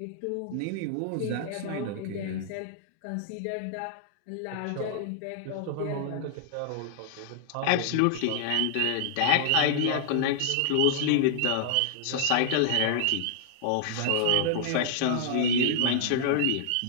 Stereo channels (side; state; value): both; different; correlation -0.01